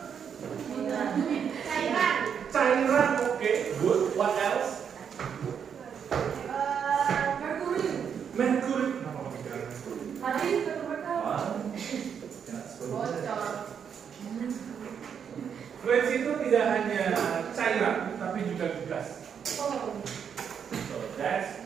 Cairan. Okay, good. What else? Mercury. Fluids itu tidak hanya cairan, tapi juga gas. So that's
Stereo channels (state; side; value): quieter; left; 7.5 dB